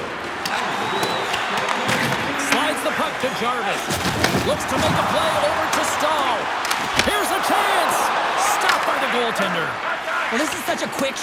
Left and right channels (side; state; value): both; identical; correlation 1.00